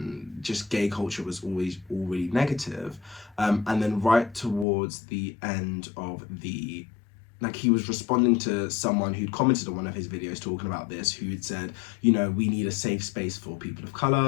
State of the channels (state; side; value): drops out; right; at 4.7 s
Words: just gay culture was always all really negative. And then right towards the end of the like he was responding to someone who'd commented on one of his videos talking about this, who'd said, you know, we need a safe space for people of